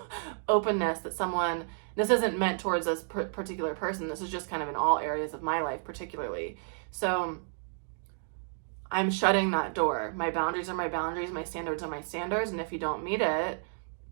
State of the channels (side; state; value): left; silent; digital silence